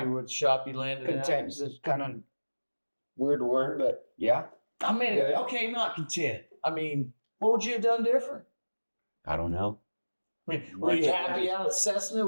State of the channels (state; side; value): inverted; both; correlation -1.00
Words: Yeah. with the shop you landed at? Content is kind of weird word, but yeah. I mean, Yeah. okay, not content. I mean, what would you have done different? I don't know. I mean, were you happy out at Cessna